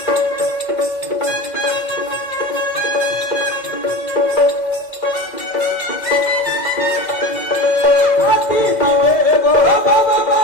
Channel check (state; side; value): late; right; 2.0 ms